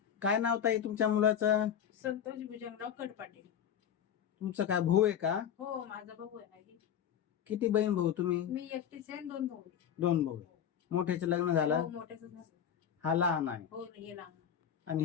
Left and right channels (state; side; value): quieter; right; 8.8 dB